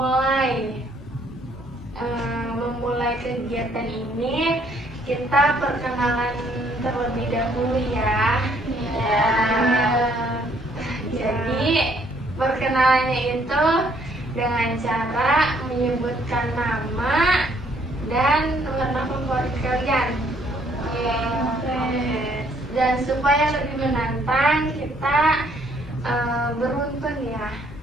kegiatan ini, kita perkenalan terlebih dahulu ya. Jadi perkenalannya itu dengan cara menyebutkan nama dan warna favorit kalian. Dan supaya lebih menantang, kita beruntun ya.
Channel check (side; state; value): both; normal; correlation 0.65